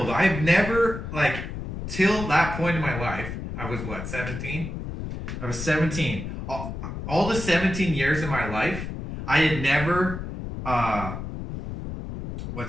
I've never, like, till that point in my life, I was, 17? I was 17. All the 17 years of my life, I had never,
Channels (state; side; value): noise; left; rumble, 7 dB below the sound